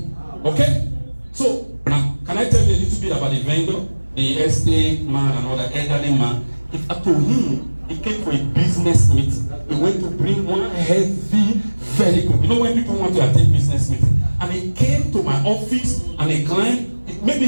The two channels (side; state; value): both; inverted; correlation -1.00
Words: Okay? So now, can I tell you a little bit about the vendor? The estate man and all that elderly man. If I told him, he came for a business meeting. He went to bring one heavy vehicle. You know when people want to attend business meeting? And he came to my office and he climbed. Maybe